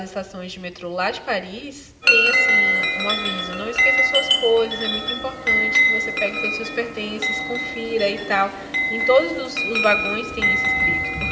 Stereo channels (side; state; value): both; identical; correlation 1.00